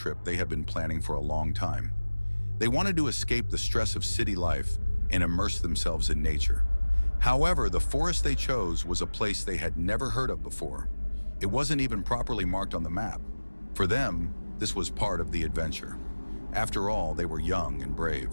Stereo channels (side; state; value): both; inverted; correlation -1.00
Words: they had been planning for a long time. They wanted to escape the stress of city life and immerse themselves in nature. However, the forest they chose was a place they had never heard of before. It wasn't even properly marked on the map. For them, this was part of the adventure. After all, they were young and